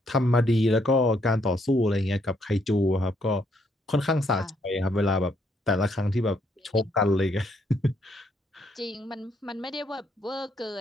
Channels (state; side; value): normal; both; correlation 0.72